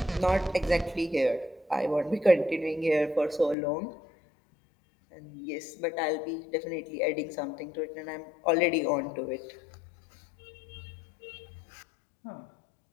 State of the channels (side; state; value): right; drops out; at 3.6 s